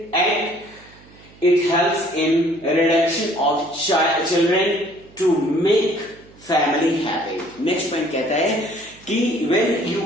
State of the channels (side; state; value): right; noise; hum, 25 dB below the sound